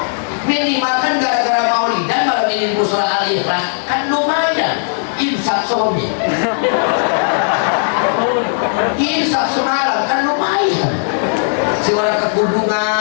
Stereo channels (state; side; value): silent; right; digital silence